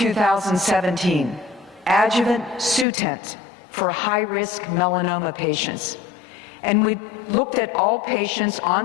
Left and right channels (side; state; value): right; drops out; at 2.9 s